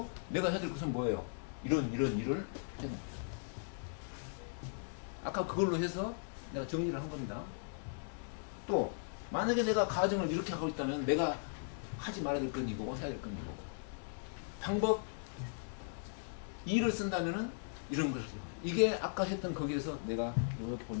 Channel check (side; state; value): right; silent; digital silence